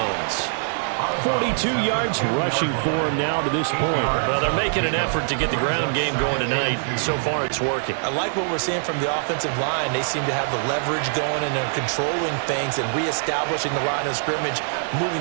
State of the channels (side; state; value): left; silent; digital silence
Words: 42 yards rushing for him now to this point. Well, they're making an effort to get the ground game going tonight. So far, it's working. I like what we're seeing from the offensive line. They seem to have the leverage going, and they're controlling things and reestablishing the line of scrimmage,